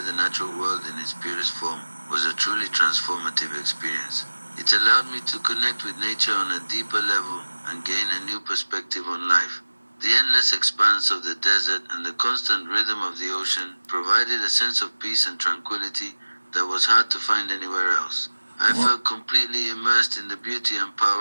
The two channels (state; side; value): inverted; both; correlation -1.00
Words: the natural world in its purest form, was a truly transformative experience. It allowed me to connect with nature on a deeper level and gain a new perspective on life. The endless expanse of the desert and the constant rhythm of the ocean provided a sense of peace and tranquility that was hard to find anywhere else. I felt completely immersed in the beauty and